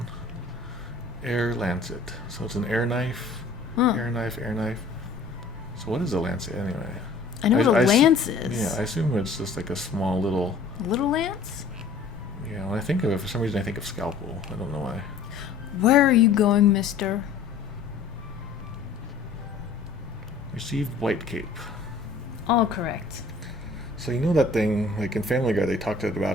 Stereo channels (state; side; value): quieter; right; 4.2 dB